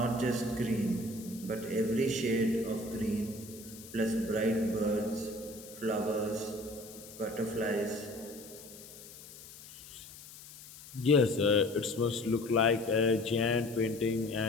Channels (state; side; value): noise; left; hiss, 17 dB below the sound